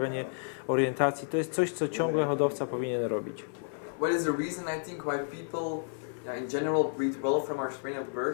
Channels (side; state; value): right; silent; 57 dB below the other